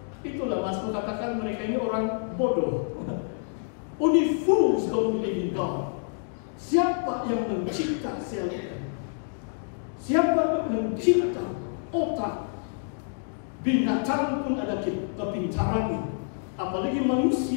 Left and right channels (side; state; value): right; silent; digital silence